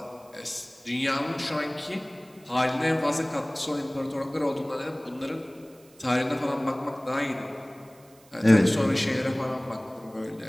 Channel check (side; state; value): right; noise; hiss, 28 dB below the sound